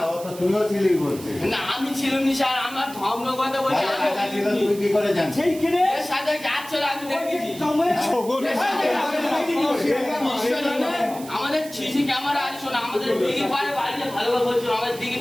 ও তো তুইও ছিলি বলছিস না আমি ছিলাম নি স্যার আমার ধর্ম কথা বলছে রাজা ছিল তুই কি করে জানিস সেইখানে এর সাথে যাচ্ছিল আমি দেখেছি আমাদের সিসি ক্যামেরা আছে শোনো আমাদের দিঘির পাড়ে বাড়ি ভালোভাবে বলছো আমাদের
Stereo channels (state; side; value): noise; right; hiss, 16 dB below the sound